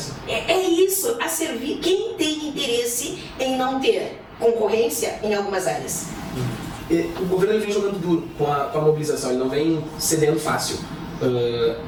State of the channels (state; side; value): identical; both; correlation 1.00